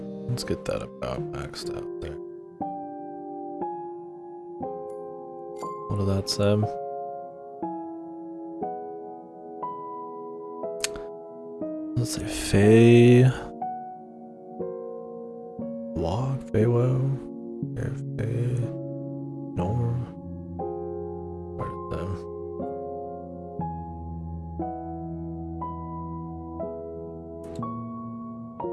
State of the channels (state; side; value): identical; both; correlation 1.00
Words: Let's get that about maxed out there. What did that say? Let's say Fey Walk, Feywo, Fey Norm. Part of them.